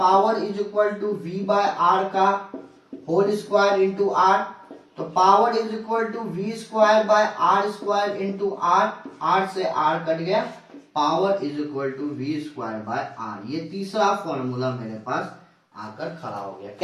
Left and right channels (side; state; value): both; identical; correlation 1.00